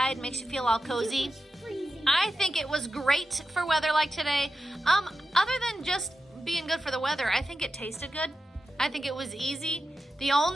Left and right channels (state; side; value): normal; both; correlation 0.91